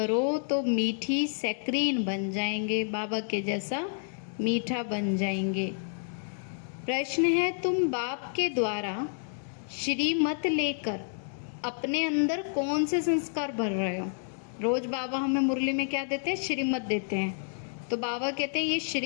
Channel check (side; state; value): right; silent; 58 dB below the other